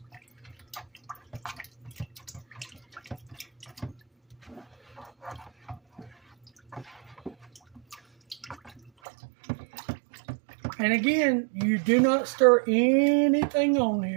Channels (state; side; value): drops out; left; at 8.9 s